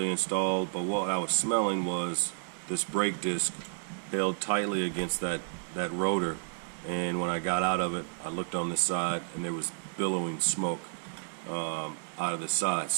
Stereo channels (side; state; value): left; silent; digital silence